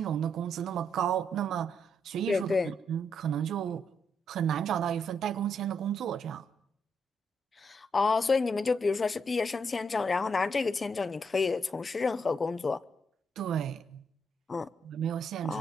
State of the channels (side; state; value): both; normal; correlation 0.77